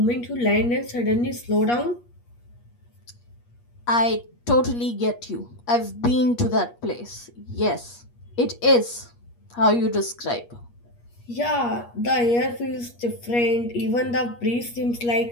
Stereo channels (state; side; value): late; right; 8.4 ms